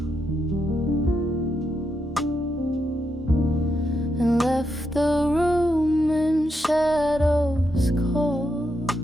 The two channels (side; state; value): both; normal; correlation 0.82